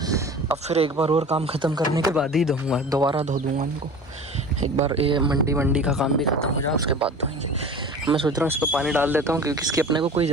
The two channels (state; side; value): normal; both; correlation 0.38